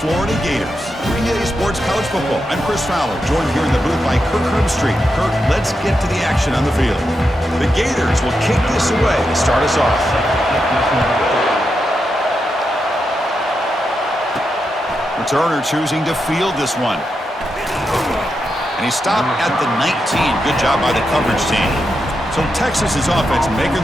Florida Gators. 3A Sports College Football. I'm Chris Fowler, joined here in the booth by Kirk Herbstreit. Kirk, let's get to the action on the field. The Gators will kick this away to start us off. Returner choosing to field this one. And he stopped at the 19. Good job by the coverage team. So Texas's offense making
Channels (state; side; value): normal; both; correlation 0.86